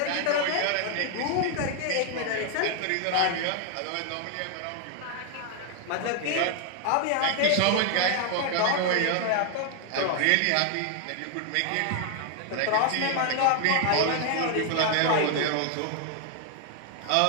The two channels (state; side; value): different; both; correlation 0.00